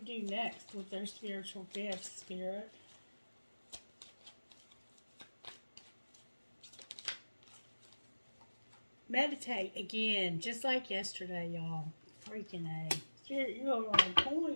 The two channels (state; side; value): inverted; both; correlation -1.00